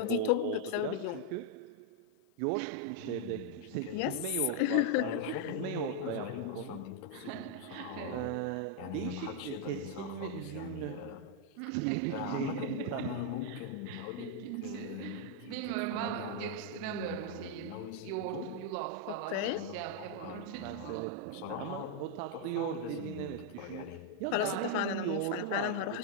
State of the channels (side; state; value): both; different; correlation 0.00